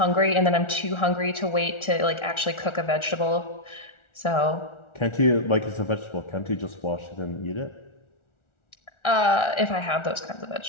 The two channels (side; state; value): right; late; 1.4 ms